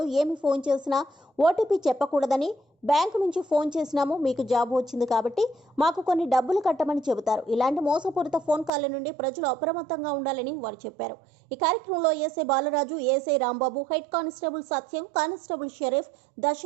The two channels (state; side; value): drops out; left; at 8.7 s